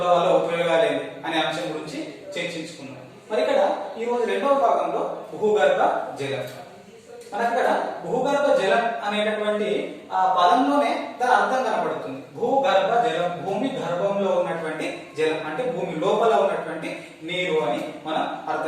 వల్ల ఉపయోగాలు ఏంటి అనే అంశం గురించి చర్చించుకున్నాం. మరి ఇక్కడ ఈ రోజు 2వ భాగంలో భూగర్భ జలం. మనకి ఇక్కడ భూగర్భ జలం అనేటటువంటి ఆ పదంలోనే దాని అర్థం కనబడుతుంది. భూగర్భ జలం, భూమి గర్భంలో ఉన్నటువంటి జలం అంటే భూమి లోపల ఉన్నటువంటి నీరు అని మనం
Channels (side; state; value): both; identical; correlation 1.00